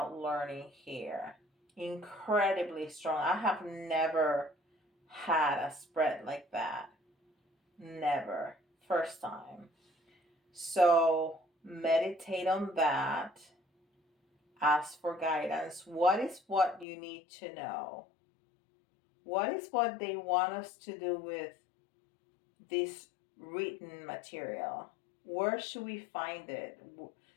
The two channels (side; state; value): right; drops out; at 16.9 s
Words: learning here. Incredibly strong. I have never had a spread like that. Never. First time. So meditate on that. Ask for guidance. What is what you need to know? What is what they want us to do with this written material? Where should we find it?